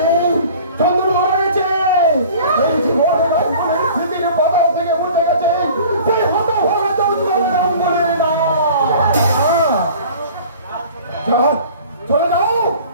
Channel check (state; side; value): inverted; both; correlation -0.45